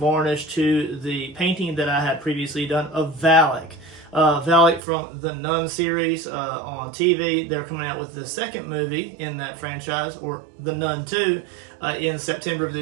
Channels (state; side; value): drops out; left; at 4.8 s